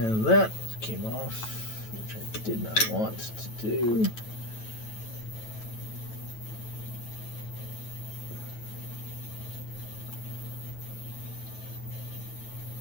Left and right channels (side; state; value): right; late; 9.1 ms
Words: that came off, which I did not want to do.